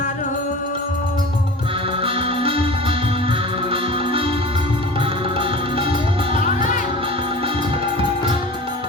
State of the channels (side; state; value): both; normal; correlation 0.37